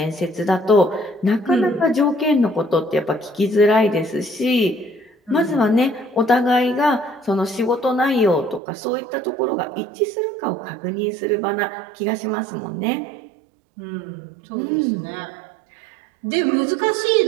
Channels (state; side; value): drops out; left; at 8.6 s